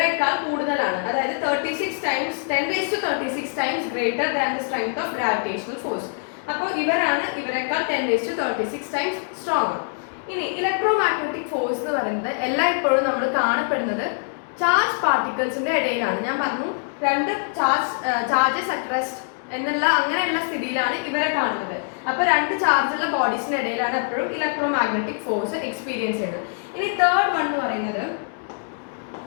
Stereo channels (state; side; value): silent; right; digital silence